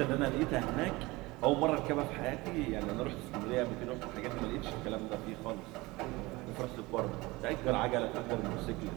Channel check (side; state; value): left; quieter; 22.0 dB